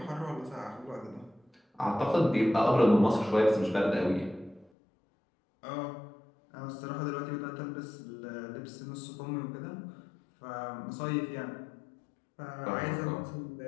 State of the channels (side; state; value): right; drops out; at 4.7 s